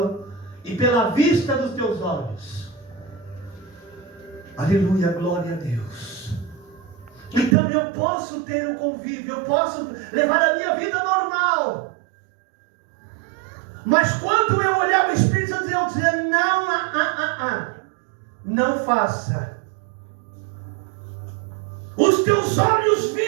e pela vista dos teus olhos. Aleluia, glória a Deus. Então eu posso ter o convívio, eu posso levar a minha vida normal. Mas quando eu olhar o Espírito Santo, eu dizer: não faça. Os teus olhos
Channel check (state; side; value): drops out; left; at 7.6 s